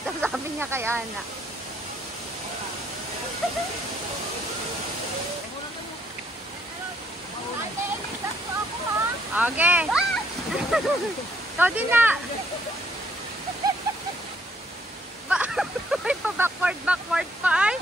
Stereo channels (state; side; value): normal; both; correlation 0.68